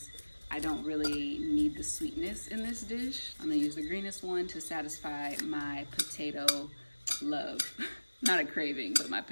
I don't really need the sweetness in this dish. I'm gonna use the greenest one to satisfy my potato love. Not a craving, but my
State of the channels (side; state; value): both; inverted; correlation -1.00